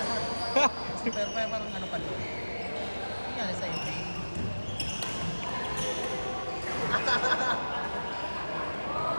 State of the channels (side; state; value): both; inverted; correlation -1.00